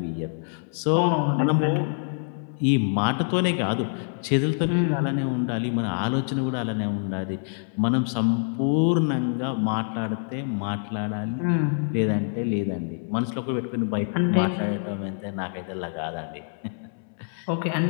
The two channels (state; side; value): silent; right; 61 dB below the other